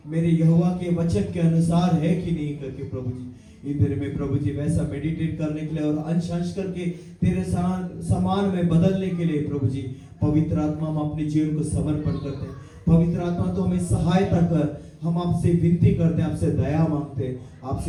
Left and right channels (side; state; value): both; identical; correlation 1.00